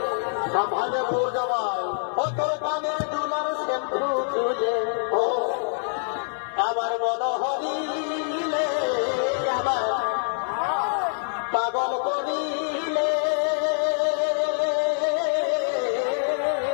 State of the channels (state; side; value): silent; right; digital silence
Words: ভালো বোর জমায় ও তোর কানে দুলার শ্যাম্পু চুলে ও আমার মনোহরিলে আমার পাগল করিলে